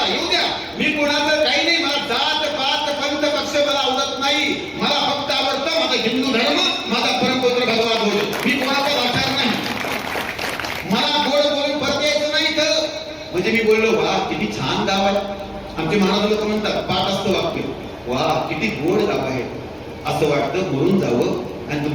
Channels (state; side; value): identical; both; correlation 1.00